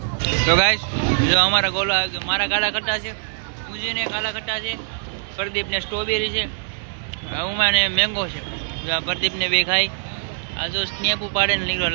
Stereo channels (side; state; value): left; silent; digital silence